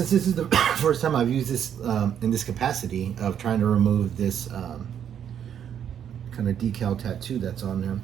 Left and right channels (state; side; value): quieter; left; 9.0 dB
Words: this is the first time I've used this in this capacity of trying to remove this kind of decal tattoo that's on there.